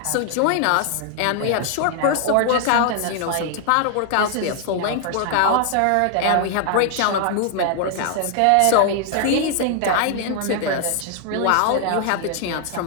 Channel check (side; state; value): both; different; correlation 0.00